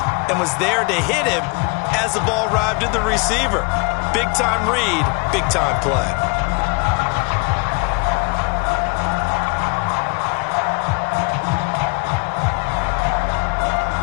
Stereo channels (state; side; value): quieter; right; 30.9 dB